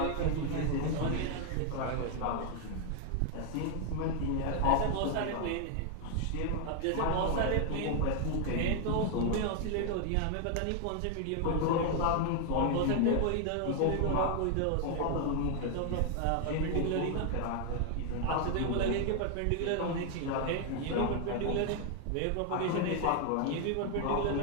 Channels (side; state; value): both; different; correlation 0.00